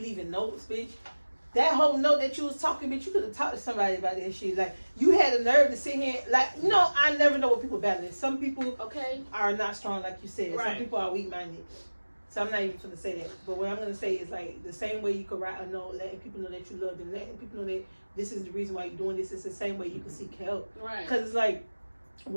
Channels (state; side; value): inverted; both; correlation -1.00